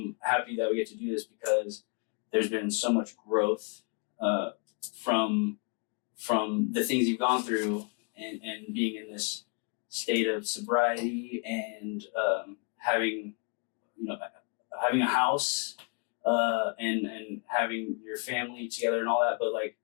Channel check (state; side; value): quieter; right; 35.5 dB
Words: happy that we get to do this because there's been so much growth from the things you've gone through and being in this state of sobriety and having a house. And having your family together and all that, but like